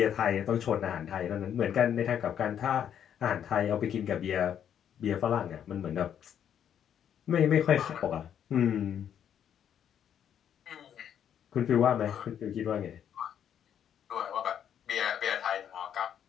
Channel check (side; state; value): right; quieter; 9.2 dB